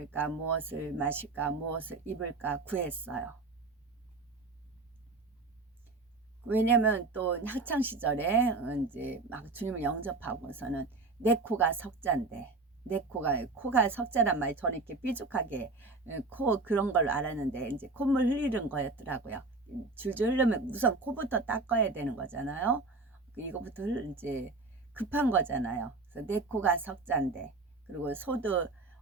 무엇을 마실까, 무엇을 입을까 구했어요. 왜냐면 또 학창 시절에 이제 막 주님을 영접하고서는 내 코가 석자인데 내 코가 석자란 말이 저는 이렇게 삐죽하게 코 그런 걸로 알았는데 이제 콧물 흘리는 거였더라고요. 줄줄 흐르면 우선 코부터 닦아야 되는 거잖아요. 이거부터 이제 급한 거잖아요. 그래서 내 코가 석자인데 그리고 소도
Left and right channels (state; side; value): quieter; left; 3.7 dB